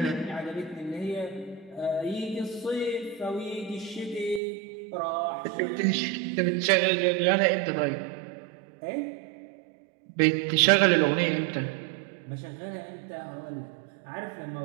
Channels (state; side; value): drops out; left; at 4.4 s